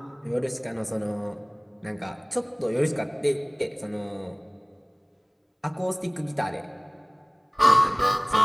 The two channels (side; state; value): both; identical; correlation 1.00